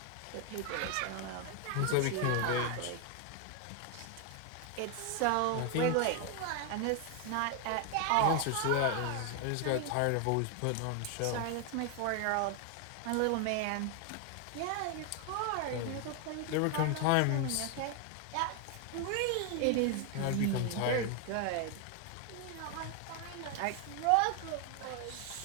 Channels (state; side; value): different; both; correlation 0.01